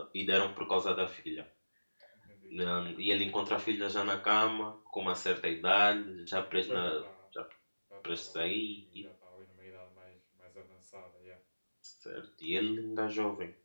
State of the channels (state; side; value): inverted; both; correlation -1.00